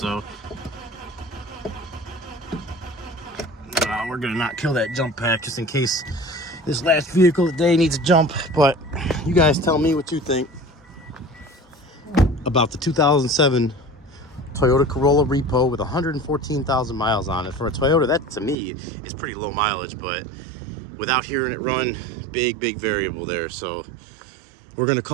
We're gonna not kill that jump pack just in case this last vehicle today needs a jump, but you guys tell me what you think about the 2007 Toyota Corolla Repo with 114,000 miles on it. For a Toyota, that to me is pretty low mileage, but without hearing it run, big variable there. So we're gonna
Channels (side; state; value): left; drops out; at 18.6 s